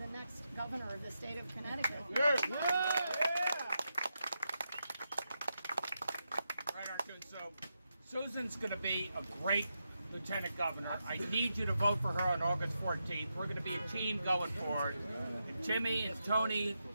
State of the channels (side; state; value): both; inverted; correlation -0.86